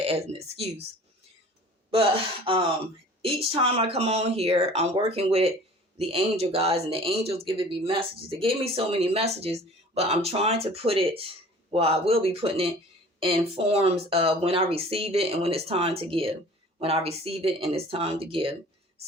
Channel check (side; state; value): both; normal; correlation 0.46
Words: as an excuse. But each time I come on here, I'm working with the angel guys, and the angels giving me messages. They gave me so many messages, but I'm trying to put it, I will be putting it in forms of when I receive it and when it's time to give. When I receive it and it's time to give.